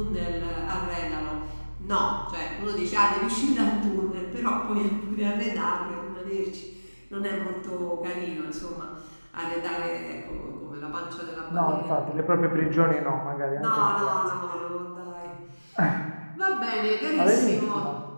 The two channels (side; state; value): both; inverted; correlation -1.00